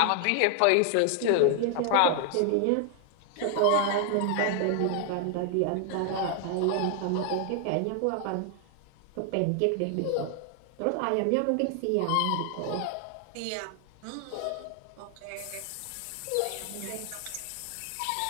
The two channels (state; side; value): different; both; correlation 0.00